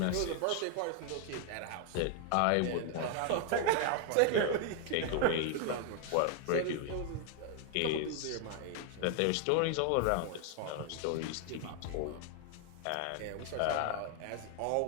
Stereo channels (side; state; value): both; different; correlation 0.00